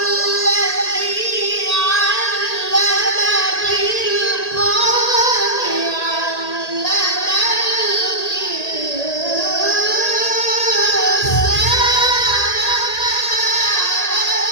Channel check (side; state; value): right; late; 1.8 ms